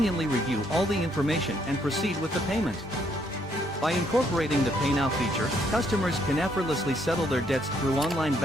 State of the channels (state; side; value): normal; both; correlation 0.71